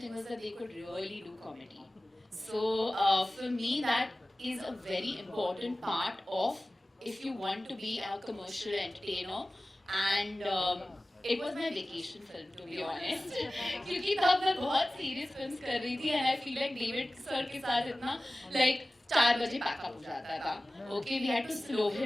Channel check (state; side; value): normal; both; correlation 0.97